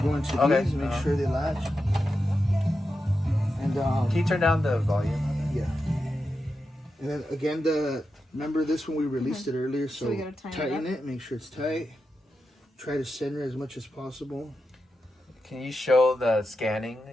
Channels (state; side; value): normal; both; correlation 0.89